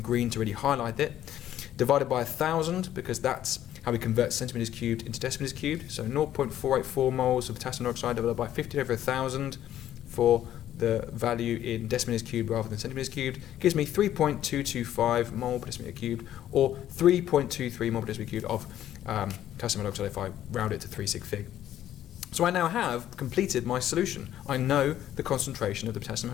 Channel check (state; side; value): quieter; right; 11.9 dB